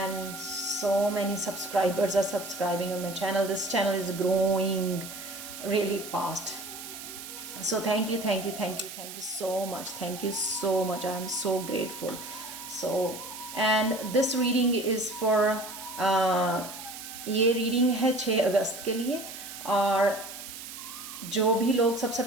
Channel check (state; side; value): noise; right; hiss, 11 dB below the sound